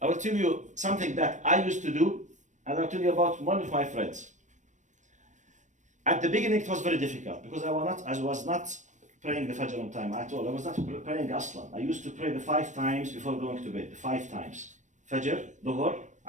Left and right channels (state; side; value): late; left; 0.35 ms